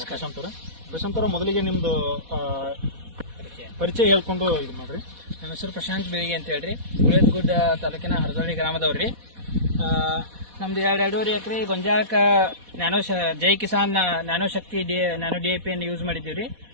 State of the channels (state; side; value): late; left; 4.1 ms